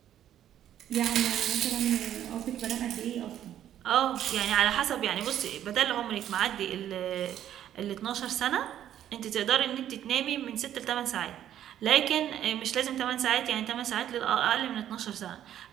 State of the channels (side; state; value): left; quieter; 11.0 dB